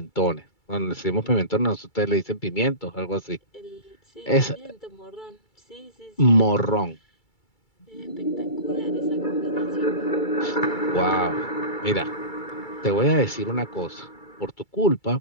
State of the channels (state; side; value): late; right; 2.3 ms